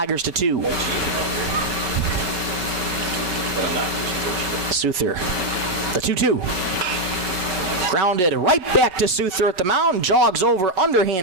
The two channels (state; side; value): late; left; 5.1 ms